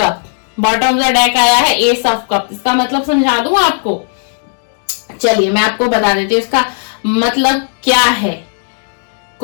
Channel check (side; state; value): right; silent; digital silence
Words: bottom of the deck आया है एस ऑफ कप। इसका मतलब समझा दूं आपको, चलिए मैं आपको बता देती हूँ इसका मतलब क्या है।